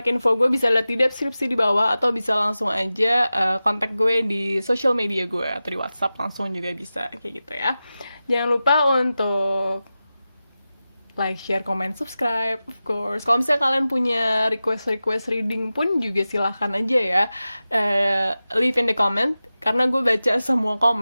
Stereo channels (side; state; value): both; inverted; correlation -0.94